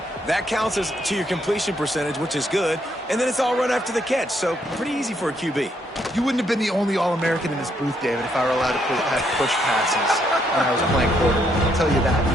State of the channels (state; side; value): normal; both; correlation 0.73